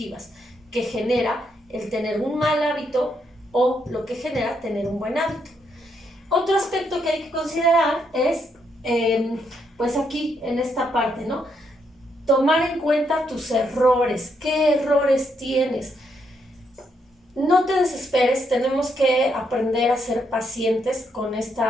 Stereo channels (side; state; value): both; normal; correlation 0.77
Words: que genera el tener un mal hábito o lo que genera tener un buen hábito. Otro aspecto que hay que considerar es, pues aquí en esta parte, ¿no? Tomar en cuenta tus errores, qué errores tienes. No te desesperes, tenemos que aprender a ser pacientes con